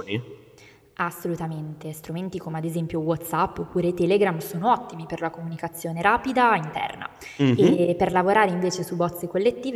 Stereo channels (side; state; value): both; identical; correlation 1.00